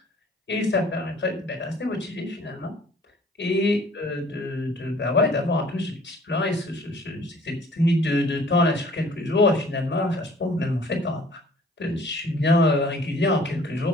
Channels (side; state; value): both; normal; correlation 0.54